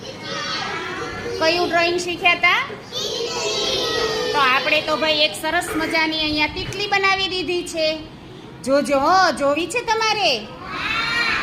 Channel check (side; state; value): both; identical; correlation 1.00